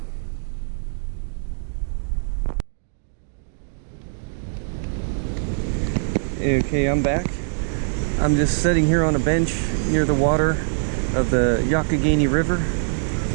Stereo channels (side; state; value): left; silent; digital silence